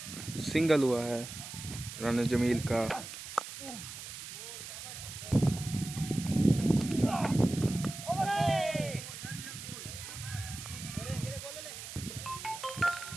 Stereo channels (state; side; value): noise; right; hiss, 10 dB below the sound